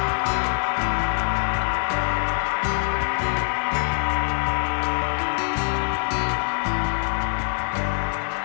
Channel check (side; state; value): right; silent; 63 dB below the other